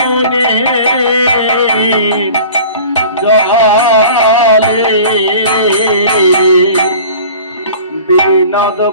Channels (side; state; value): both; inverted; correlation -0.43